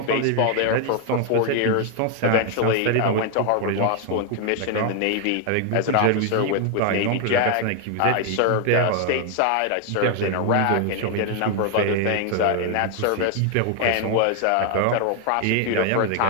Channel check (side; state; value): both; different; correlation 0.01